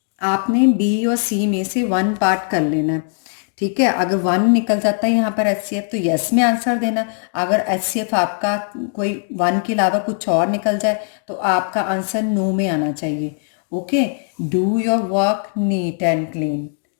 आपने बी और सी में से 1 पार्ट कर लेना है, ठीक है। अगर 1 निकल जाता है यहाँ पर HCF तो यस में आंसर देना। अगर HCF आपका कोई 1 के अलावा कुछ और निकल जाए तो आपका आंसर नो में आना चाहिए, okay. Do your work neat and clean,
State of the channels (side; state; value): right; silent; 66 dB below the other